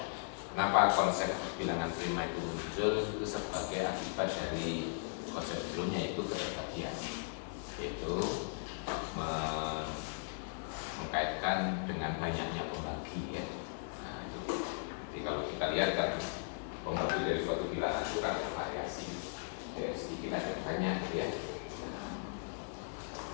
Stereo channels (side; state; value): right; silent; digital silence